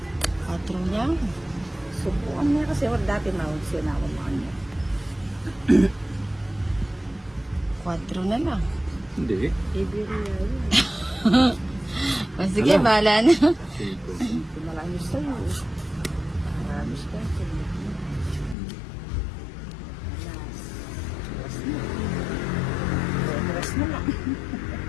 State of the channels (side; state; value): right; drops out; at 18.6 s